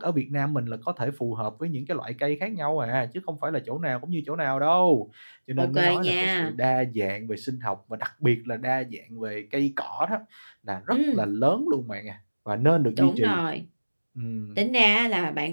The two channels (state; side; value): inverted; both; correlation -1.00